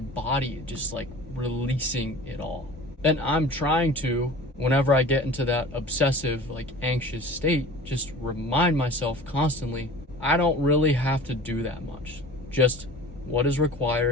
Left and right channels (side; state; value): both; normal; correlation 0.41